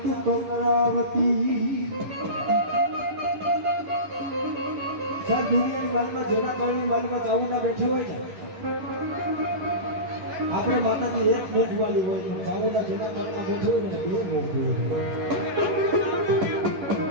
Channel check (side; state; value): left; late; 11 ms